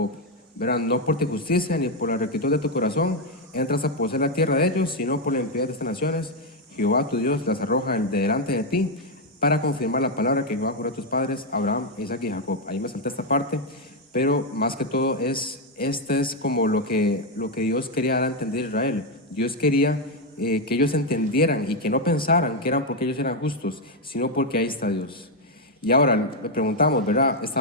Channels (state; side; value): normal; both; correlation 0.03